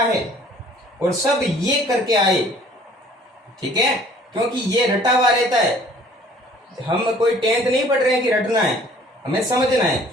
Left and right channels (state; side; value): normal; both; correlation 0.54